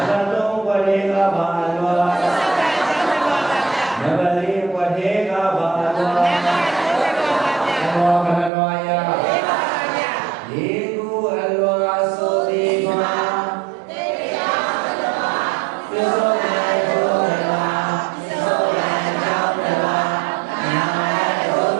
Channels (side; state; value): left; drops out; at 8.5 s